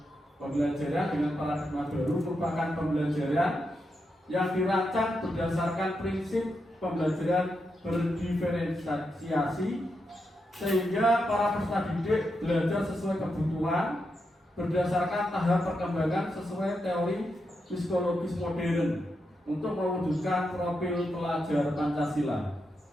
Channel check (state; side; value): normal; both; correlation 0.85